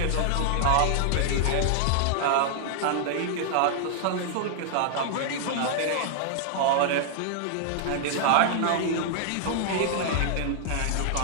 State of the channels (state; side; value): different; both; correlation -0.01